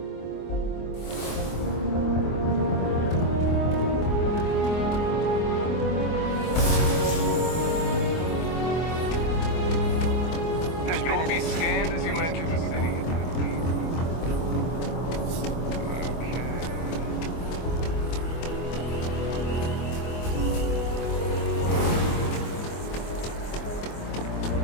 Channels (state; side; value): late; right; 24 ms